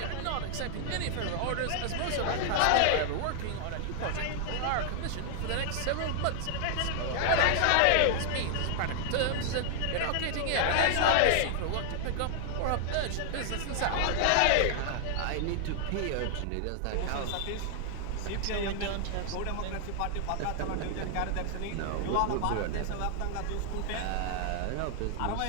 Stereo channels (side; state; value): both; different; correlation 0.00